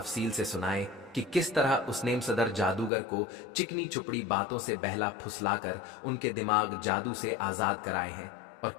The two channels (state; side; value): drops out; right; at 2.9 s